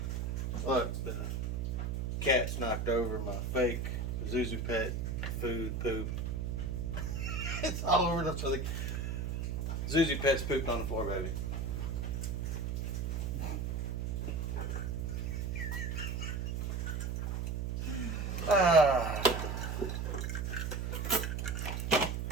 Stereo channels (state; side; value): noise; right; hum, 1 dB below the sound